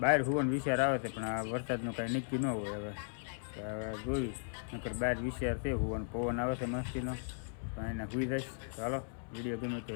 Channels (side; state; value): right; silent; 53 dB below the other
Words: હોવાનો વિચાર આવે છે પણ આ વરસાદનું કાંઈ નક્કી ન હોય. હવે જોઈ નકર બહાર વિચાર છે હોવાનો પવન આવે છે મસ્તીનો તો એને હોઈ જઈશ. ચાલો વિડીયો ગમે તો